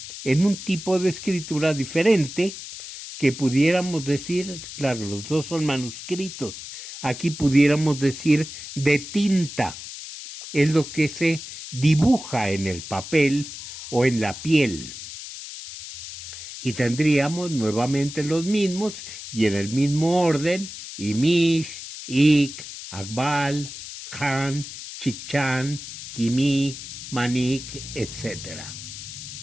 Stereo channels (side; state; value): left; noise; hiss, 11 dB below the sound